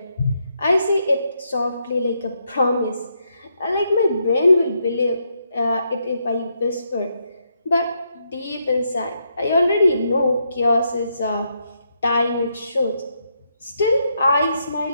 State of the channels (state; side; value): inverted; both; correlation -0.79